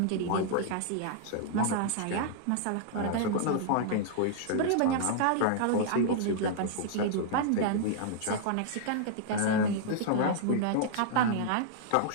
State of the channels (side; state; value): both; different; correlation -0.01